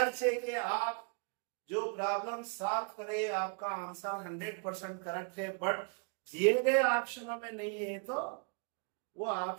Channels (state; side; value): quieter; left; 39.6 dB